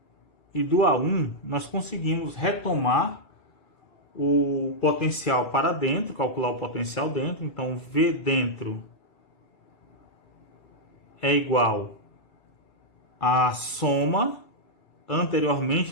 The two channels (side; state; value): right; late; 2.7 ms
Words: e do A1, nós conseguimos retomar o potencial para dentro, calcular o potencial dentro. Então, V dentro é igual à soma.